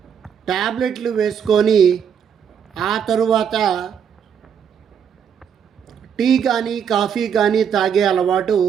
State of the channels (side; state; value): left; quieter; 7.8 dB